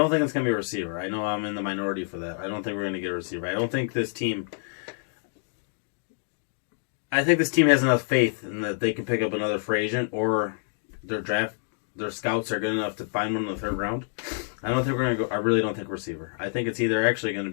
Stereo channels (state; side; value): silent; right; digital silence